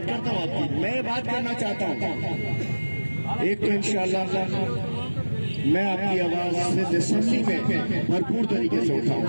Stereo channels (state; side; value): inverted; both; correlation -1.00